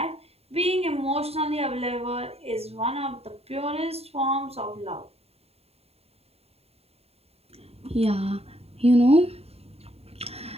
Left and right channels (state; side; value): late; left; 0.29 ms